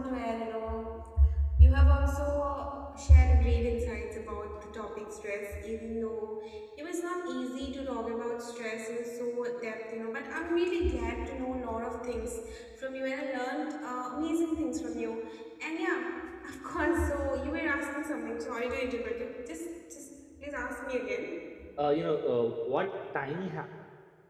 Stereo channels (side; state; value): both; identical; correlation 1.00